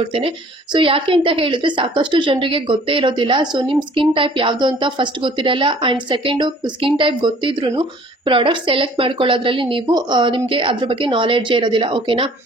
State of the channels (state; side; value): normal; both; correlation 0.53